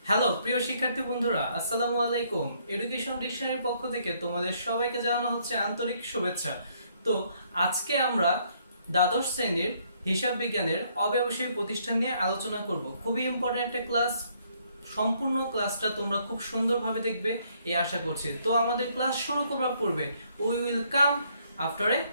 Hello প্রিয় শিক্ষার্থী বন্ধুরা, আসসালামু আলাইকুম। এডুকেশন ডিকশনারির পক্ষ থেকে তোমাদের সবাইকে জানানো হচ্ছে আন্তরিক শুভেচ্ছা। তো আজকে আমরা দ্বাদশ শ্রেণীর হিসাব বিজ্ঞানের অব্যবসায়ী প্রতিষ্ঠান নিয়ে আলোচনা করব। খুবই ইম্পর্টেন্ট একটা ক্লাস। সম্পূর্ণ ক্লাসটা তোমরা খুব সুন্দরভাবে দেখবে এই আশা করছি। তো আমাদের ক্লাস শুরু করার পূর্বে we will come after a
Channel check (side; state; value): both; inverted; correlation -0.68